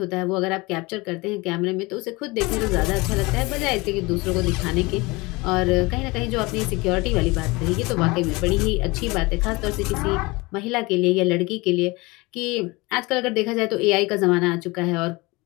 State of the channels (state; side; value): quieter; right; 24.0 dB